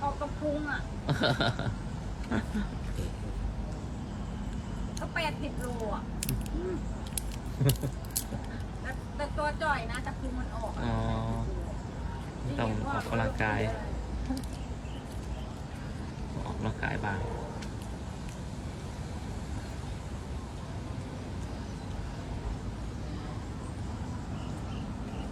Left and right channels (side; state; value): both; identical; correlation 1.00